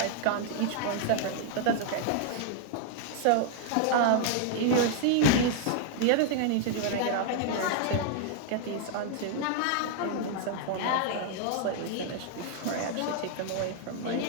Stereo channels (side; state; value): both; different; correlation 0.00